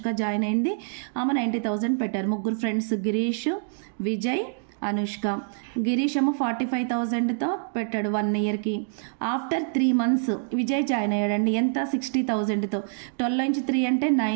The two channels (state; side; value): silent; left; digital silence